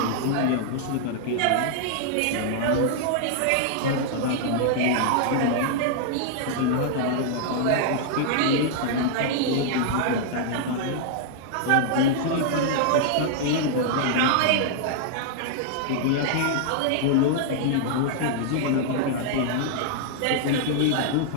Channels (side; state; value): both; different; correlation -0.01